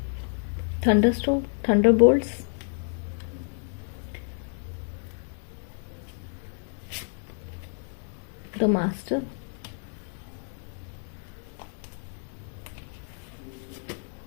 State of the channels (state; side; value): silent; right; 59 dB below the other